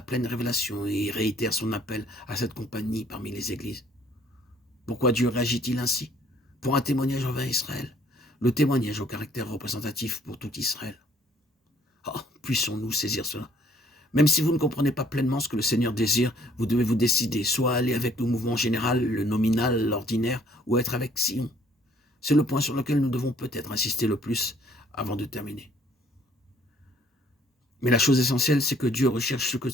pleine révélation et réitère son appel à cette compagnie parmi les églises. Pourquoi Dieu réagit-il ainsi? Pour un témoignage envers Israël, le témoignage au caractère représentatif pour tout Israël. Oh, puissons-nous saisir cela. Même si vous ne comprenez pas pleinement ce que le Seigneur désire, vous devez vous décider, soit aller avec le mouvement général, le nominal, l'ordinaire, ou être avec Sion. C'est le point sur lequel nous devons peut-être insister le plus avant de terminer. Mais la chose essentielle, c'est que Dieu recherche ce que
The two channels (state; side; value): normal; both; correlation 0.61